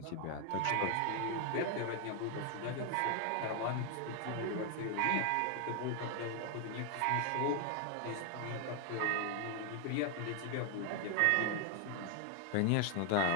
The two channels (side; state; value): both; different; correlation 0.00